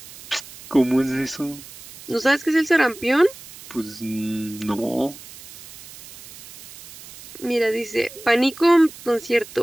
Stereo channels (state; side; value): noise; right; hiss, 17 dB below the sound